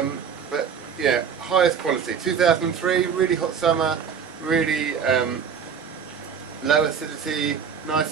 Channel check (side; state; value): left; quieter; 7.0 dB